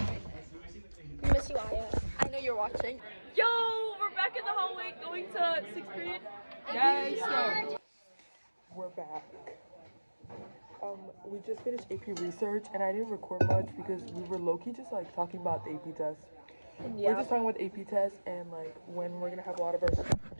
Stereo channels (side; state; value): both; inverted; correlation -1.00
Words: We miss you, Aya. I know you're watching. Yo, we're back in the hallway going to 6th period. Yes, we're back. We just finished AP research, and I didn't record much because we were low-key just like talking about the AP test. We're just talking about the AP test and like when we're gonna have a lot of our stuff